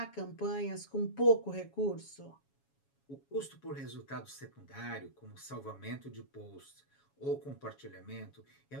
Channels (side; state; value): right; late; 7.2 ms